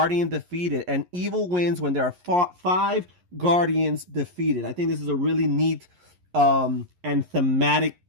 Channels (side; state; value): left; late; 11 ms